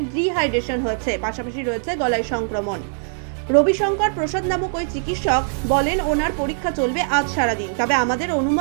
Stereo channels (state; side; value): silent; left; digital silence